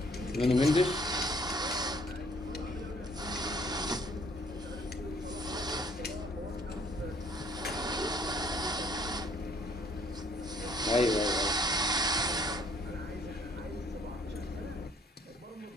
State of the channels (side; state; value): both; normal; correlation 0.62